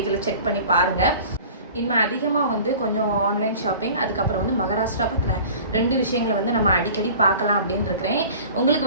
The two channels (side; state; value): both; inverted; correlation -0.43